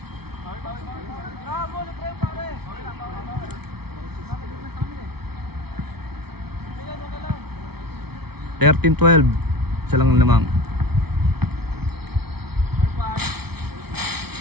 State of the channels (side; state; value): left; late; 0.96 ms